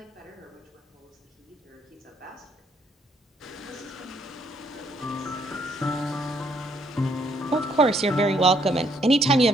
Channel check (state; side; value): normal; both; correlation 0.69